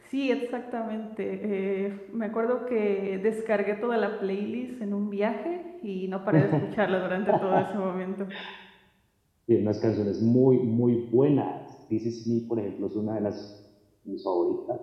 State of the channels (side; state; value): both; identical; correlation 1.00